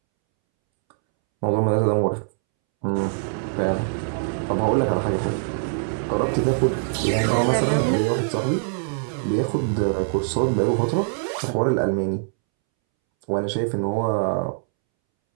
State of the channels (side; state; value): left; silent; 63 dB below the other